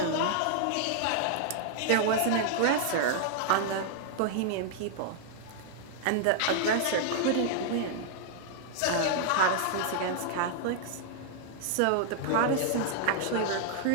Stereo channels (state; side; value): different; both; correlation -0.01